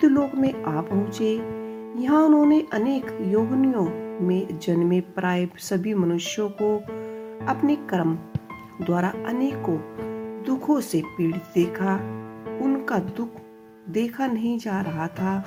लोक में आ पहुंचे। यहाँ उन्होंने अनेक योनियों में जन्मे प्राय सभी मनुष्यों को अपने कर्म द्वारा अनेकों दुखों से पीड़ित देखा। उनका दुख देखा नहीं जा रहा था।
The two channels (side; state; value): both; identical; correlation 1.00